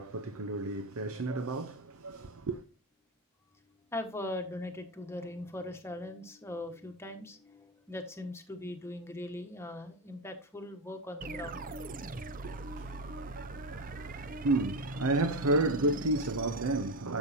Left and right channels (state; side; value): normal; both; correlation 0.13